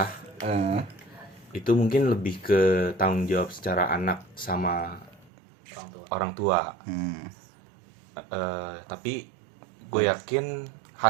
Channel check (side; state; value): left; drops out; at 5.3 s